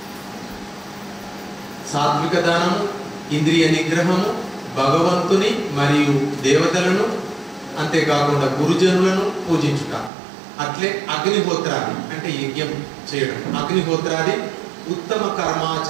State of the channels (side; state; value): left; drops out; at 10.1 s